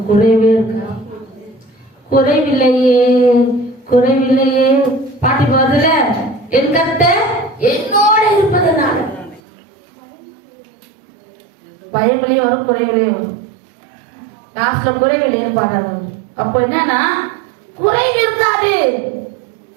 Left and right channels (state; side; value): drops out; left; at 9.4 s